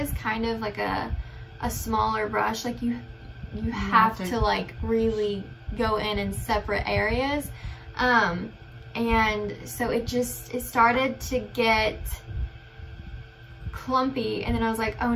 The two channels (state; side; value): identical; both; correlation 1.00